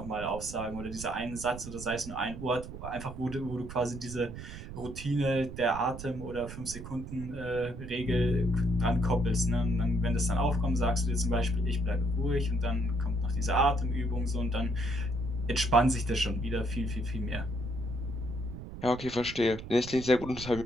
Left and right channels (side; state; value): right; noise; rumble, 11 dB below the sound